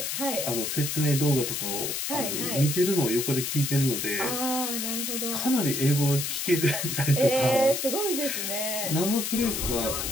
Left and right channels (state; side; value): noise; left; hiss, 2 dB below the sound